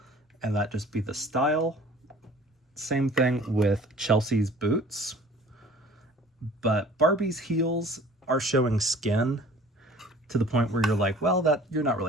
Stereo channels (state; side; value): normal; both; correlation 0.48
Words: and that just be the style. Same thing with Chelsea's boots. But Barbie's heels are showing skin to the point where you're like, well, that you're not